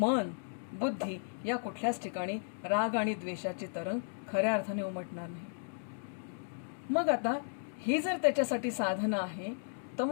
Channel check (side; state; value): right; silent; digital silence